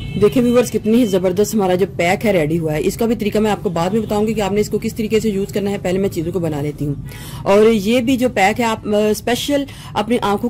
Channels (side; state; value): both; identical; correlation 1.00